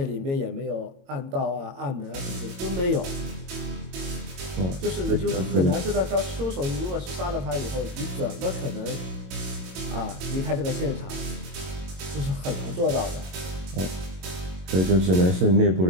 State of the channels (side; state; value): left; late; 22 ms